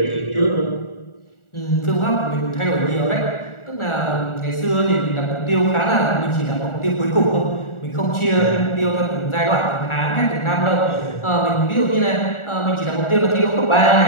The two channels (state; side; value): late; right; 1.4 ms